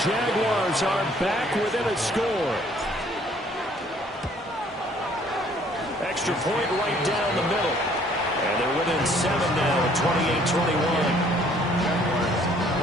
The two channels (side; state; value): both; normal; correlation 0.60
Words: Jaguars are back within a score. Extra point right down the middle. And they're within 7 now at 28-21.